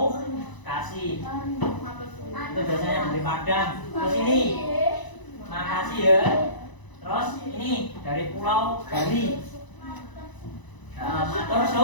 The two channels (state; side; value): late; right; 1.0 ms